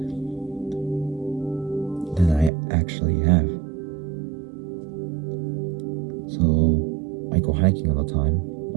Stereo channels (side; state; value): left; drops out; at 2.5 s